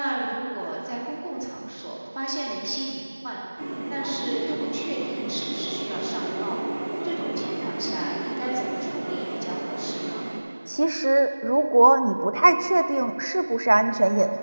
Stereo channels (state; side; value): inverted; both; correlation -1.00